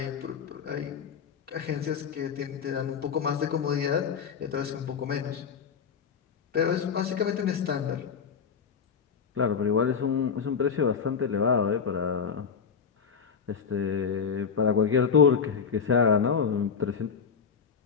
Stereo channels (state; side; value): quieter; right; 6.5 dB